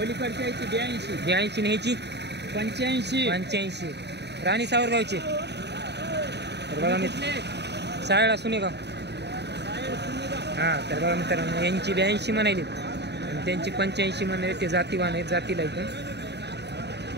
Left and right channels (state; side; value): late; left; 0.49 ms